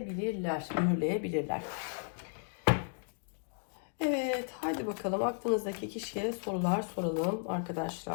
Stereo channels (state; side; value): silent; right; 55 dB below the other